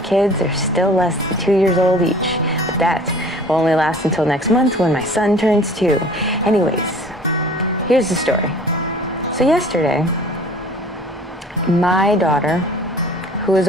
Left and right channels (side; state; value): both; normal; correlation 0.48